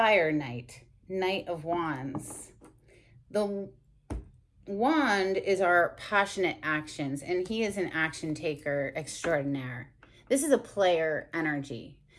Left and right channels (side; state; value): both; identical; correlation 1.00